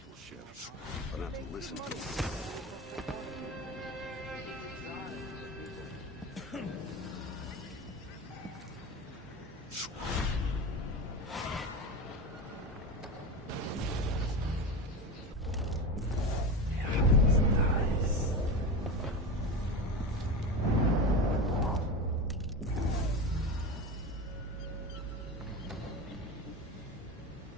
shift. I don't have to listen to them.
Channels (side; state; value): both; normal; correlation 0.24